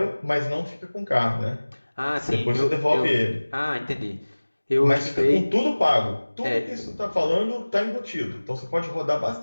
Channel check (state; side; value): inverted; both; correlation -1.00